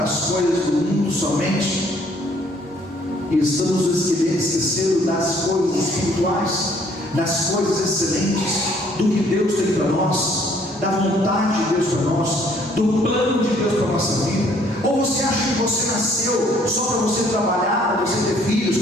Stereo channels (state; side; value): normal; both; correlation 0.62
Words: as coisas do mundo somente? E estamos esquecendo das coisas espirituais, das coisas excelentes, do que Deus tem para nós, da vontade de Deus para nós, do plano de Deus para a nossa vida. Ou você acha que você nasceu só para você trabalhar, para você ter filhos,